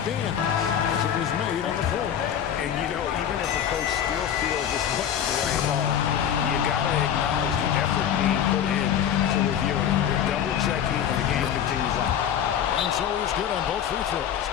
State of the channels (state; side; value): quieter; right; 9.3 dB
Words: as it was made on the floor. And, you know, even if a coach still feels this wasn't the right call, you got to acknowledge the effort being put in to review it. Double-checking, and the game continues on. And so he's good on both free throws,